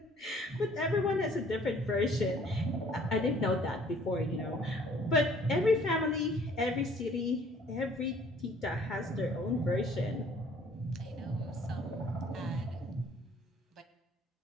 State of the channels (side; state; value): both; normal; correlation 0.57